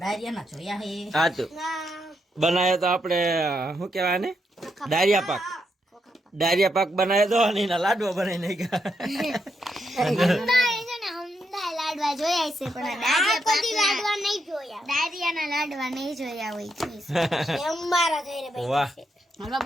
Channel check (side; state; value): both; normal; correlation 0.81